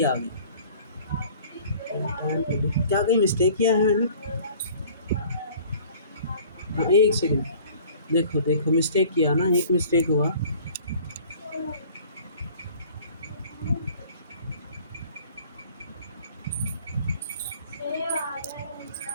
आ गया। क्या कहीं मिस्टेक किया है मैंने? हाँ, एक सेकंड, देखो देखो मिस्टेक किया ना, एक मिस्टेक हुआ।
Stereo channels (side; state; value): both; inverted; correlation -0.50